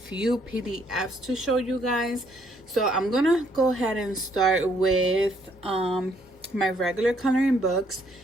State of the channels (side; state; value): both; normal; correlation 0.68